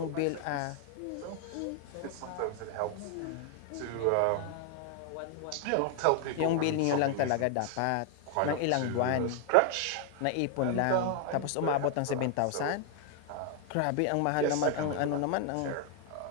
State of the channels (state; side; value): different; both; correlation 0.00